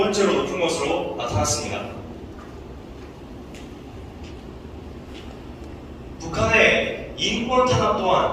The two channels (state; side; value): identical; both; correlation 1.00